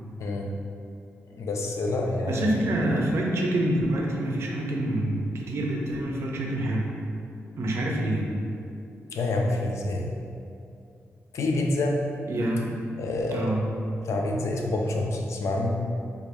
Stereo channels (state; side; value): normal; both; correlation 0.79